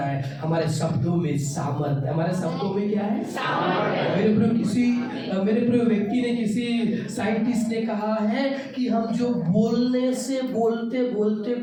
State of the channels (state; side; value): identical; both; correlation 1.00